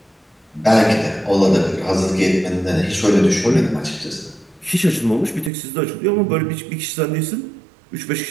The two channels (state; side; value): drops out; left; at 5.5 s